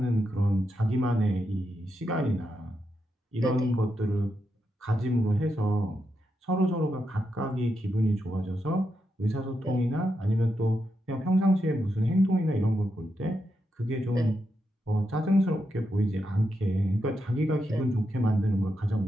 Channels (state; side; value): normal; both; correlation 0.84